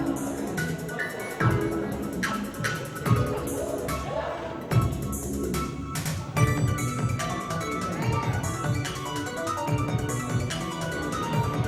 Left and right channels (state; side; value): identical; both; correlation 1.00